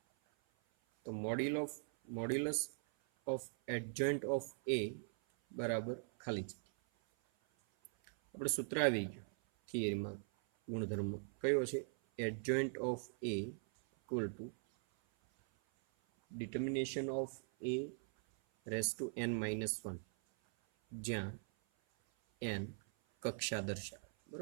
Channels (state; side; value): silent; left; 51 dB below the other